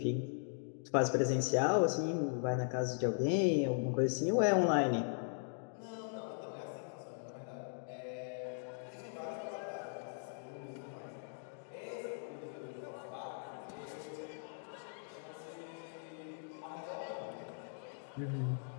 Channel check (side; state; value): right; silent; digital silence